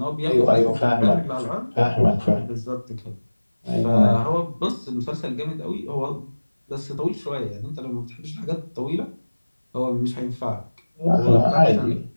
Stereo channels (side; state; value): both; inverted; correlation -1.00